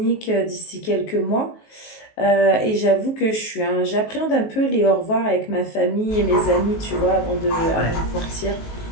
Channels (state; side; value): late; right; 19 ms